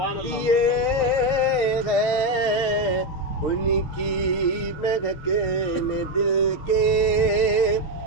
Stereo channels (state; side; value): late; right; 6.5 ms